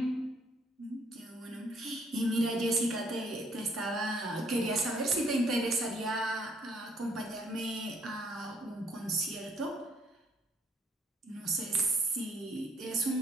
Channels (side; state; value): both; normal; correlation 0.66